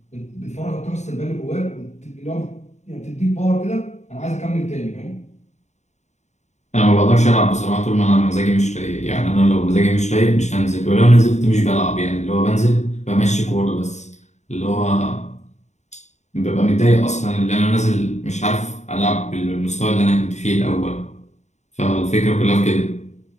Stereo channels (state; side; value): late; right; 0.33 ms